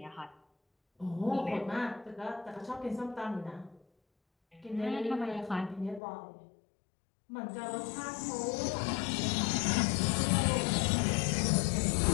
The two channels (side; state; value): right; drops out; at 6.0 s